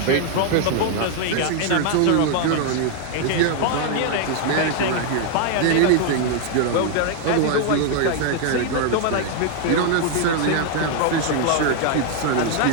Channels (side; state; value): both; different; correlation 0.00